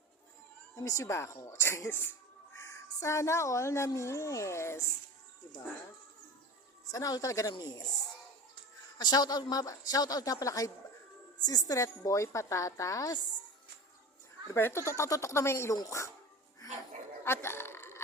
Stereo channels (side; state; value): both; normal; correlation 0.32